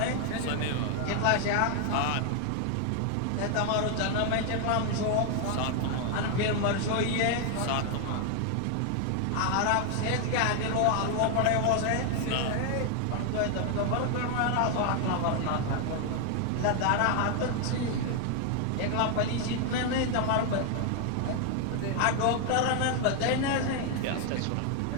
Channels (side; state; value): both; different; correlation 0.00